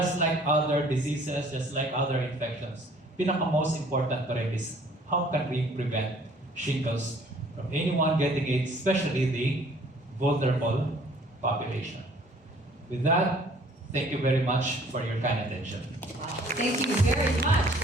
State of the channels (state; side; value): normal; both; correlation 0.56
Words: like other diseases, just like other infections, pinaka-most important pa rin is how can we prevent shingles from anyone getting it, especially the vulnerable population. With that, thank you very much for your kind attention. Wow. Thank you very much